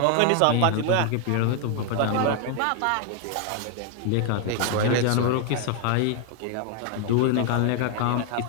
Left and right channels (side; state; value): both; different; correlation 0.00